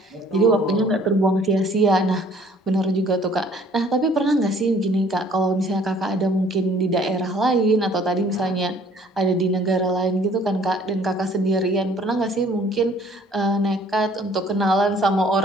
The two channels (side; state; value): both; normal; correlation 0.57